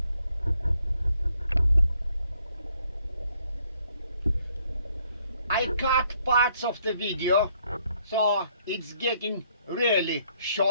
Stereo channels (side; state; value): both; inverted; correlation -0.69